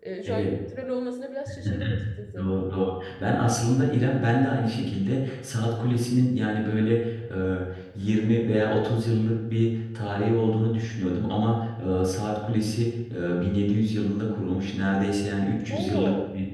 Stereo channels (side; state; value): both; identical; correlation 1.00